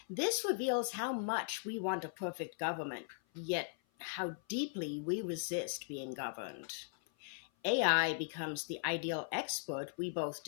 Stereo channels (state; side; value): silent; right; 52 dB below the other